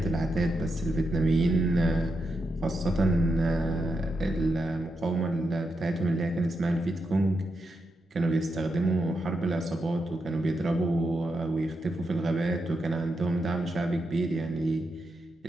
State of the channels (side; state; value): both; normal; correlation 0.85